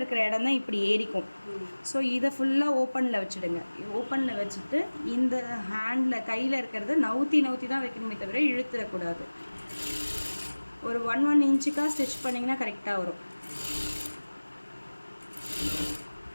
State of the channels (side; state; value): both; inverted; correlation -1.00